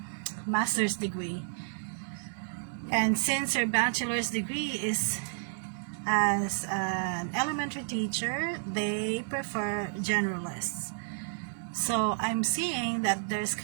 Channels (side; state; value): left; silent; 57 dB below the other